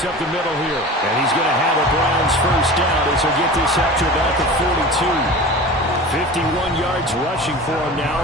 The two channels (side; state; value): both; normal; correlation 0.35